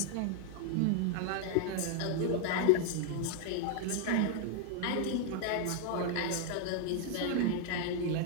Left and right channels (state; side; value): different; both; correlation 0.00